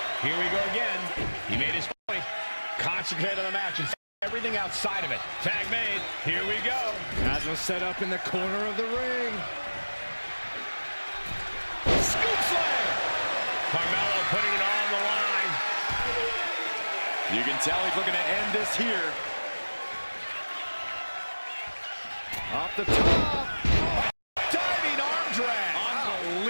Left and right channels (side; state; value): both; inverted; correlation -1.00